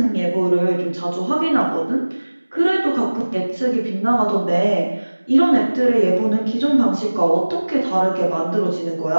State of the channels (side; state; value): both; inverted; correlation -1.00